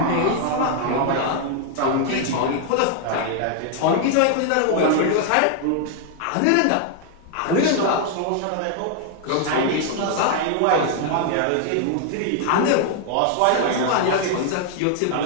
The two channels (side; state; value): both; different; correlation 0.00